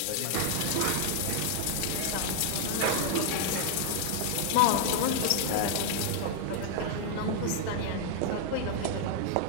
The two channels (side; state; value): both; different; correlation 0.00